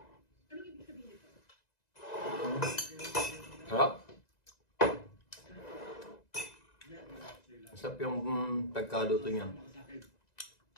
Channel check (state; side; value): late; right; 1.9 ms